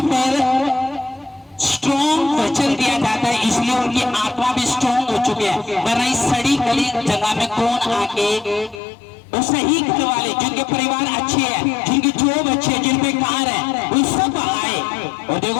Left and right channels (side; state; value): right; drops out; at 8.8 s